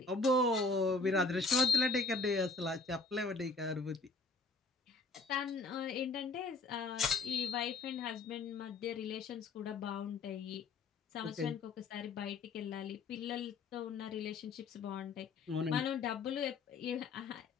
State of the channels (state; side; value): quieter; right; 3.9 dB